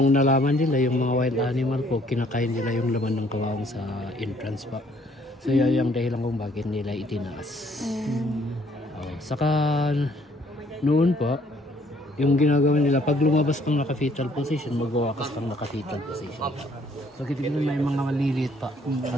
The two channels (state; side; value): normal; both; correlation 0.63